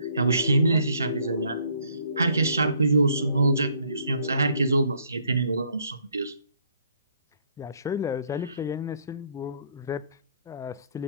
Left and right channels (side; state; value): both; inverted; correlation -0.65